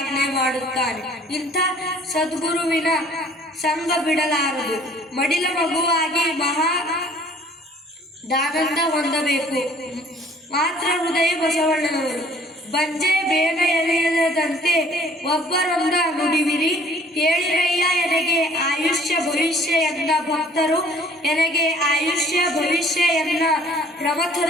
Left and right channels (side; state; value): both; normal; correlation 0.55